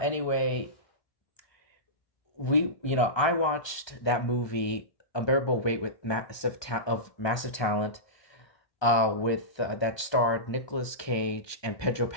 anyway, I watched that movie Unbearable Weight with massive talent, with that starred Nicolas Cage and Pedro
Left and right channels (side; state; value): right; late; 1.2 ms